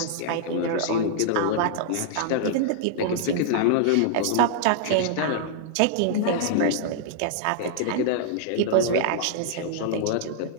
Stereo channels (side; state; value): both; different; correlation -0.01